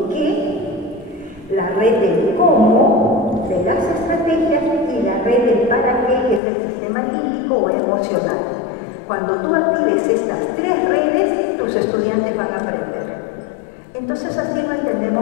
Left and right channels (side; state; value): right; drops out; at 6.4 s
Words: qué, la red del cómo de las estrategias y la red del para qué, que es el sistema límbico o emocional. Cuando tú actives estas tres redes, tus estudiantes van a aprender. Entonces así lo